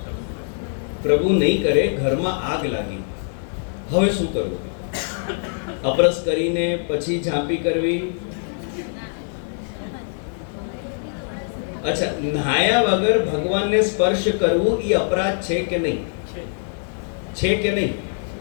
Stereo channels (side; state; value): right; silent; 64 dB below the other